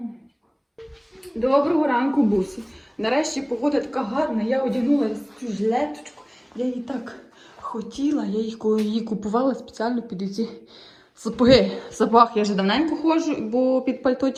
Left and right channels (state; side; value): identical; both; correlation 1.00